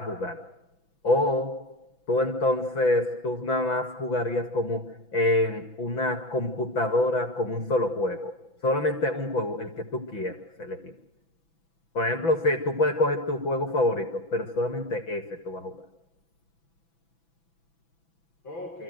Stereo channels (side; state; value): right; late; 6.0 ms